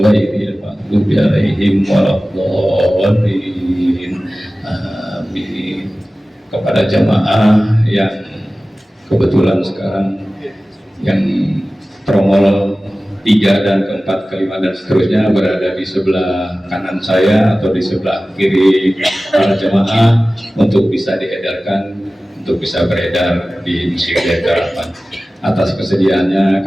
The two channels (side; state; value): both; normal; correlation 0.96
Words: maghdubi 'alaihim waladdallin amin. Kepada jamaah yang kebetulan sekarang yang tromol 3 dan keempat, kelima dan seterusnya berada di sebelah kanan saya atau di sebelah kiri para jemaah untuk bisa diedarkan, untuk bisa beredar di Masjid Harapan. Atas kesediaannya